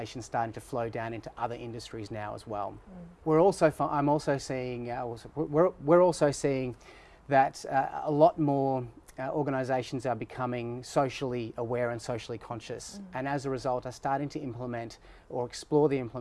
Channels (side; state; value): both; identical; correlation 1.00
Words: starting to flow down into other industries now as well. We're also seeing that a lot more organisations are becoming socially aware and socially conscious, and as a result are starting to implement or explore the